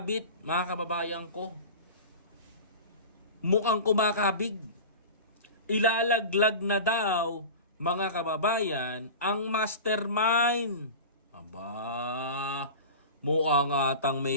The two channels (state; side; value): inverted; both; correlation -0.32